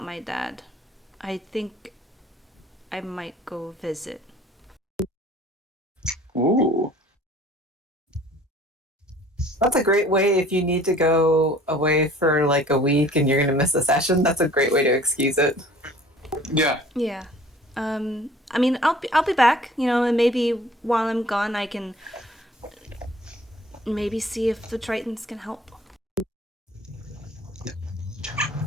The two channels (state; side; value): normal; both; correlation 0.51